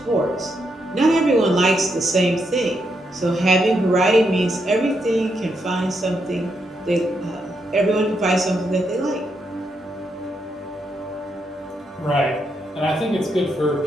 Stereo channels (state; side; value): normal; both; correlation 0.80